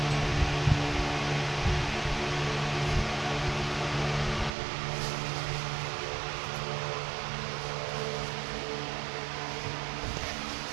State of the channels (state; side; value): drops out; left; at 4.5 s